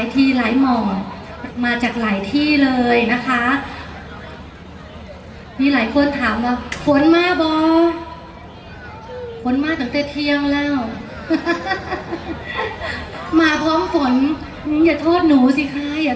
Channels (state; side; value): identical; both; correlation 1.00